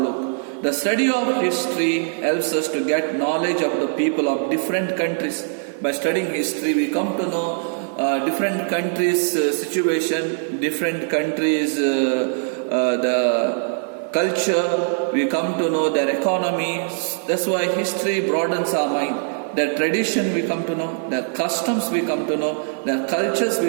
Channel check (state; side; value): silent; left; 64 dB below the other